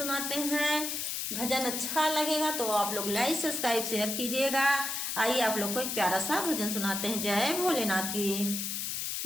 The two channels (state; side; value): noise; left; hiss, 2 dB below the sound